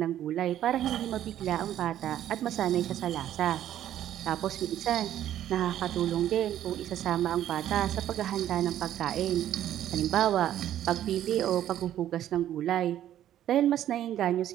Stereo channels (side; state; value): left; quieter; 11.7 dB